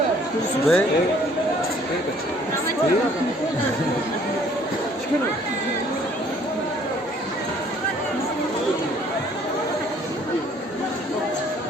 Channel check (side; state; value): both; normal; correlation 0.59